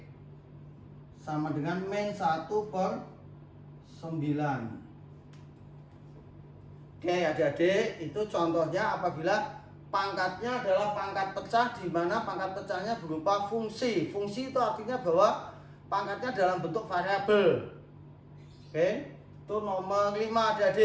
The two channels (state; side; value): identical; both; correlation 1.00